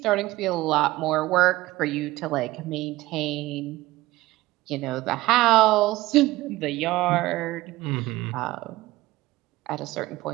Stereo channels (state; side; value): quieter; left; 18.1 dB